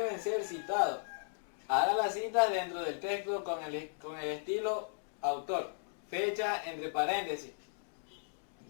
ser citados. Haga las citas dentro del texto con el estilo autor, fecha entre paréntesis.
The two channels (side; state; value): right; silent; digital silence